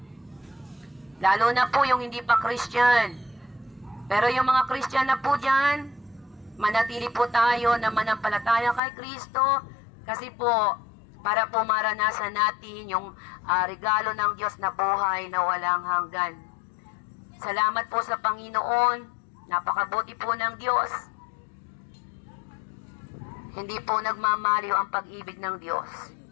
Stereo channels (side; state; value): right; drops out; at 8.8 s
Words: Lalo na po yung hindi pa Christian. Pero yung mga Christian na po dyan, manatili po tayo na manampalataya kay Kristo kasi po, para po maranasan natin yung regalo ng Diyos na buhay na walang hanggan. Salamat po sa Panginoon. Napakabuti po ng Diyos. Hindi po nagmamaliw ang pag-ibig ng Diyos.